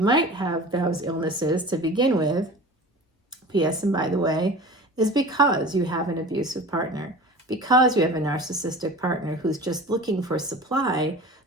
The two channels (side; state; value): both; normal; correlation 0.37